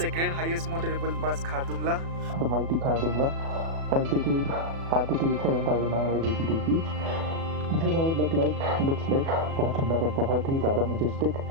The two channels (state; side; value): late; left; 36 ms